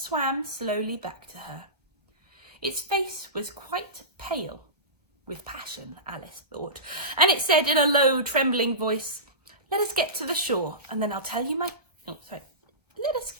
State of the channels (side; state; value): left; late; 1.3 ms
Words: slowly back to her. Its face was quite pale, with passion, Alice thought, and it said in a low, trembling voice, Let us get to the shore, and then I'll tell you my... Let us